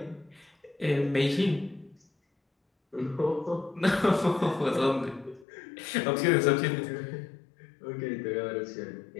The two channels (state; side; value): drops out; right; at 5.5 s